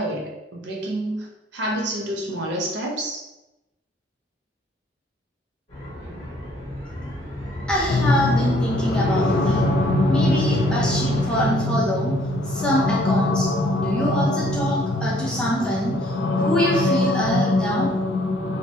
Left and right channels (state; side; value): normal; both; correlation 0.62